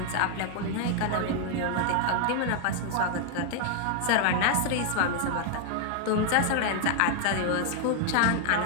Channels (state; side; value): different; both; correlation 0.00